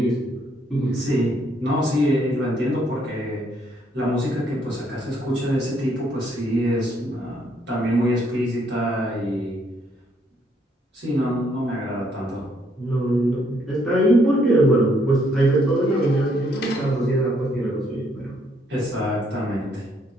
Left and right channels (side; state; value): both; normal; correlation 0.70